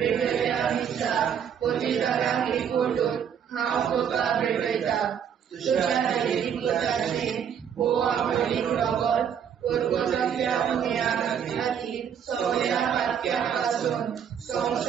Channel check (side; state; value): left; quieter; 8.2 dB